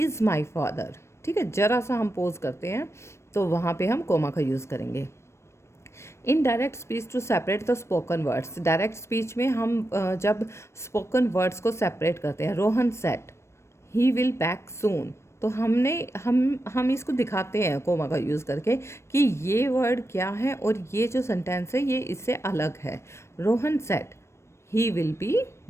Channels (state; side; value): late; right; 0.13 ms